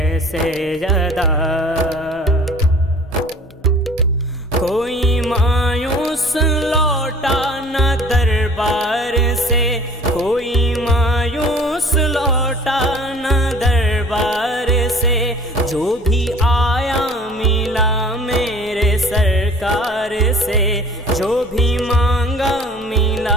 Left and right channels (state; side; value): normal; both; correlation 0.49